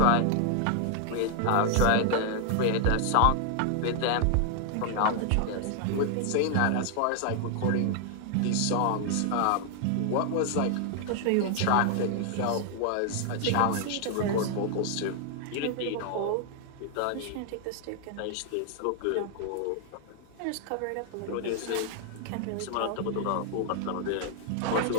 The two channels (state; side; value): different; both; correlation 0.00